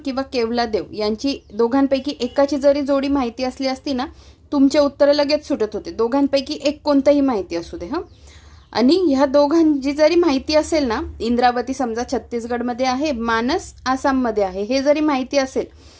किंवा केवलादेव यांची दोघांपैकी एकाची जरी जोडी माहिती असली असती ना, तुमचे उत्तर लगेच सुटत होते. दोघांपैकी एक कोणतंही माहिती असू दे. आणि ह्या दोघांची जरी माहिती असेल ना, इंद्रावती समजा छत्तीसगडमध्ये आहे, मानस आसाममध्ये आहे, हे जरी माहिती असेल,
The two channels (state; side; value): identical; both; correlation 1.00